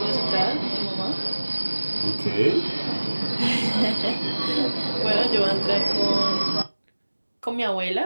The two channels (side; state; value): both; inverted; correlation -1.00